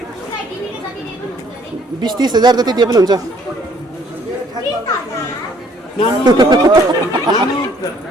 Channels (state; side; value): normal; both; correlation 0.62